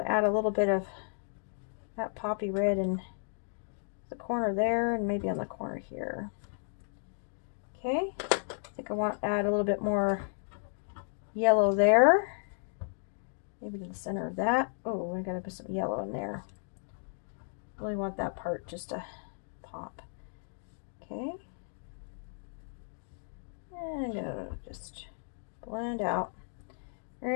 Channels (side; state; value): right; silent; digital silence